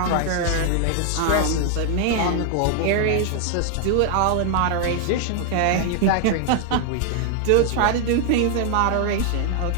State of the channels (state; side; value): different; both; correlation 0.00